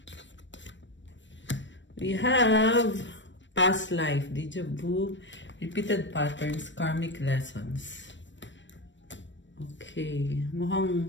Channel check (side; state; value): right; late; 0.54 ms